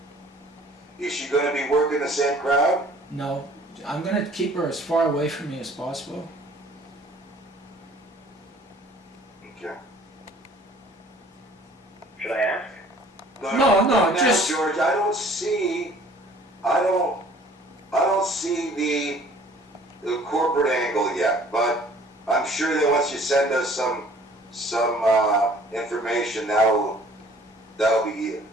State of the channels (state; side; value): normal; both; correlation 0.53